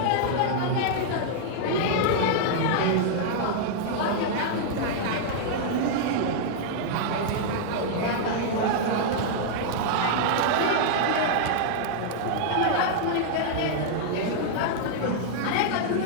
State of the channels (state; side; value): different; both; correlation -0.01